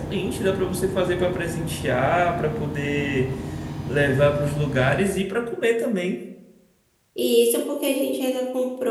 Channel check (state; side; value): identical; both; correlation 1.00